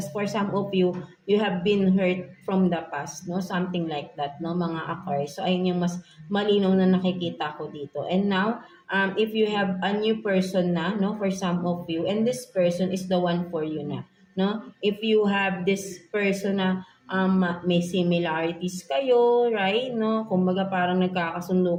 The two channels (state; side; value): identical; both; correlation 1.00